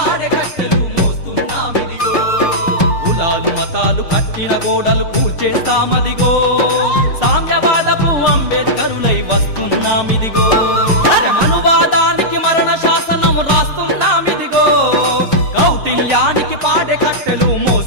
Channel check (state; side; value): late; right; 6.6 ms